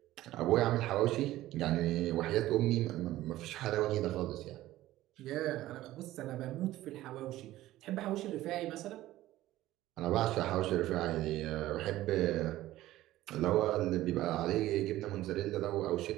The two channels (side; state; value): left; quieter; 15.4 dB